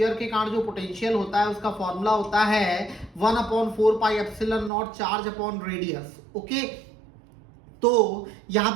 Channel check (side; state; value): left; drops out; at 4.7 s